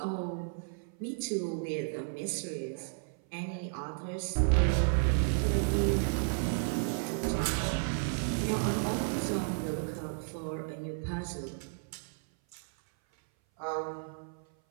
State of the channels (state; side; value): silent; left; 56 dB below the other